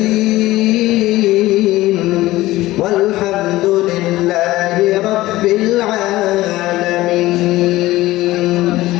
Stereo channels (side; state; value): right; quieter; 17.3 dB